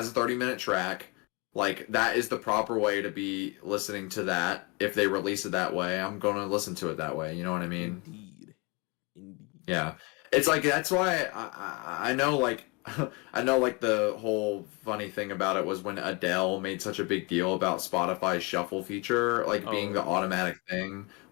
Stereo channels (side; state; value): right; quieter; 28.4 dB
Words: a 30-minute track. Like that is the proper way to be listening to that. If they release it that way, I'm gonna listen to it that way. You know what I mean? Indeed. Indeed. Yeah, it's like that's why I know like I know like the whole funny thing about it was when Adele made such a big deal about Spotify's shuffle feature like being Oh the yeah. automatic thing